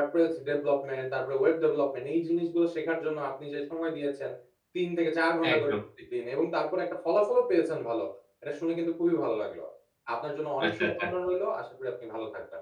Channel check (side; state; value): both; identical; correlation 1.00